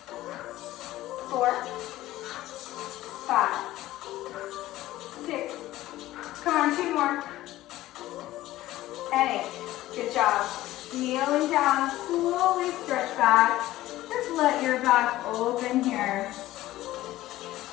4, 5, 6, come on, 2 more, and 8, good job. Kneeling down, slowly stretch back. Just let your back open here.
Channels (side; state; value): right; quieter; 15.7 dB